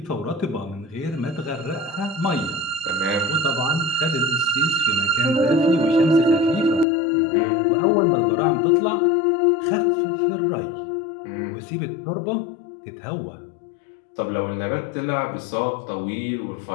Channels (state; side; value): drops out; right; at 6.9 s